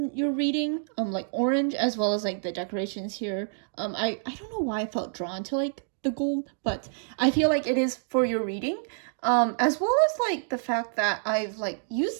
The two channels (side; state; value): left; silent; digital silence